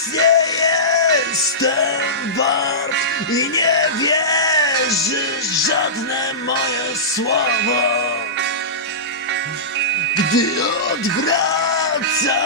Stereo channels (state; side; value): normal; both; correlation -0.19